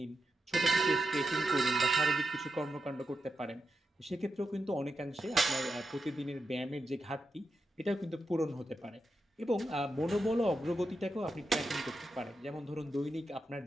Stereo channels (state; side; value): normal; both; correlation 0.88